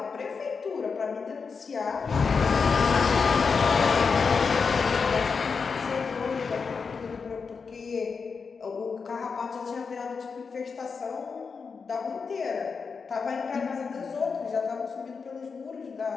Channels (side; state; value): right; quieter; 5.3 dB